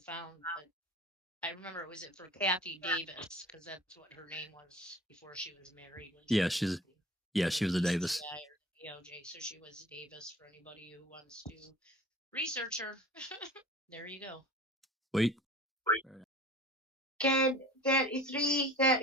found, but I remember was it for Kathy Davis, because that's what her name was before she was married. She was a Davis. DOJ, so she was Davis for anybody who wants to research her. There you go. Wait. Ken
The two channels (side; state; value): both; normal; correlation 0.42